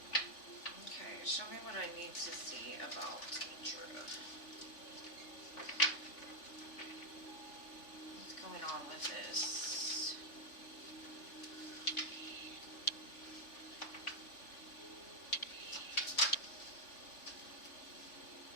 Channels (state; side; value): late; right; 3.5 ms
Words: Okay, show me what I need to see about Demetra. Going on with this.